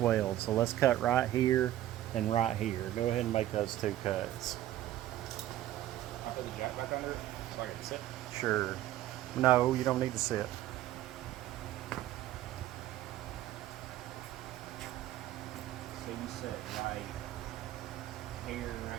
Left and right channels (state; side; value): quieter; left; 13.6 dB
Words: so let's cut right here and right here. Go ahead and make those two cuts. I'll put the jack back under it so I can sit. Sure. No, you don't need to sit. So you set right here and